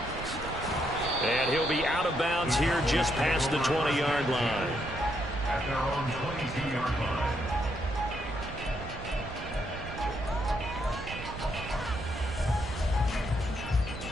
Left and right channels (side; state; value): right; noise; rumble, 10 dB below the sound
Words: And he'll be out of bounds here just past the 20-yard line. At their own 22-yard line.